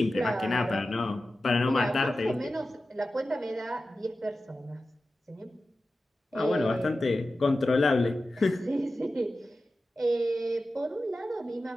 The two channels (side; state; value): both; normal; correlation 0.93